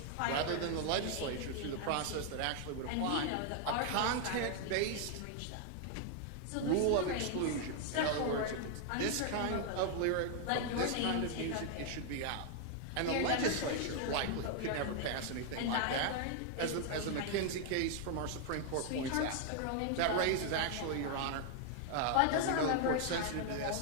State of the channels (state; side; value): different; both; correlation 0.00